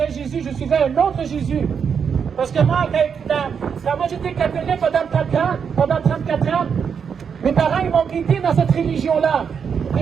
Jésus, je suivais un autre Jésus. Parce que moi, quand moi j'étais catholique pendant 34 ans, mes parents, ils m'ont guidé dans cette religion-là.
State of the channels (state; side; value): quieter; left; 6.8 dB